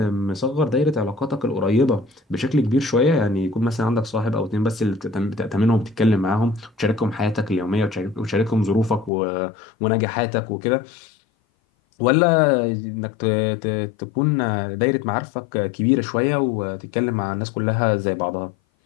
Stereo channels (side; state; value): right; drops out; at 9.1 s